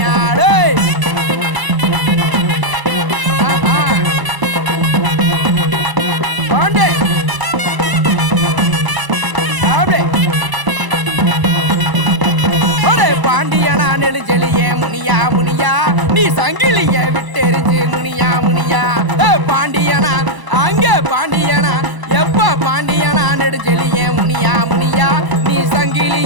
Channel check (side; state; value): left; late; 1.0 ms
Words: பாண்டியனா நெடுஞ்செலியே முனியா முனியா நீ சங்கிலிய விட்டெறிஞ்சு முனியா முனியா பாண்டியனா அங்க பாண்டியனா எப்ப பாண்டியனா நெடுஞ்செலியே முனியா முனியா நீ